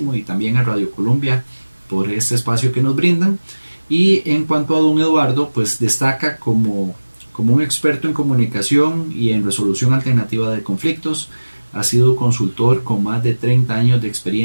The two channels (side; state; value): both; inverted; correlation -1.00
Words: y también a Radio Colombia por este espacio que nos brindan. Y en cuanto a don Eduardo, pues destaca como un experto en comunicación y en resolución alternativa de conflictos. Ha sido consultor con más de 30 años de